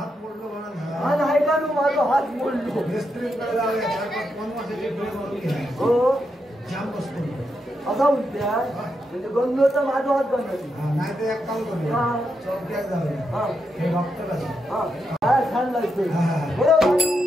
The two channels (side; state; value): both; normal; correlation 0.83